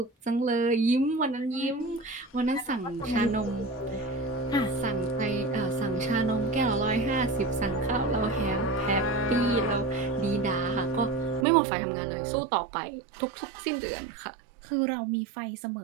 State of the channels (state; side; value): drops out; left; at 11.5 s